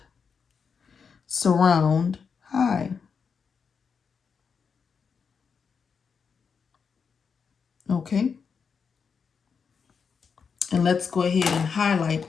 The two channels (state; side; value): quieter; right; 6.0 dB